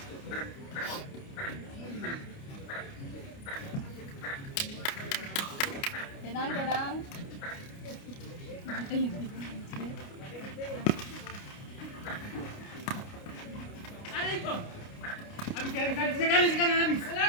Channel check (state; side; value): late; right; 29 ms